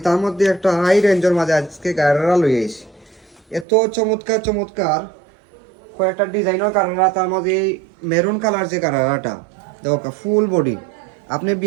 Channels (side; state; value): left; drops out; at 3.7 s